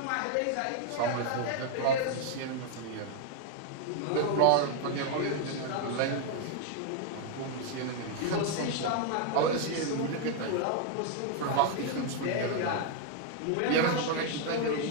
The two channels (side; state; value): both; different; correlation 0.00